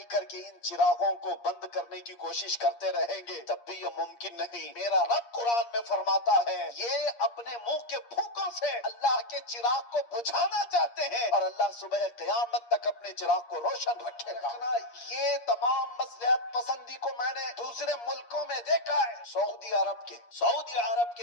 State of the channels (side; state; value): right; late; 8.5 ms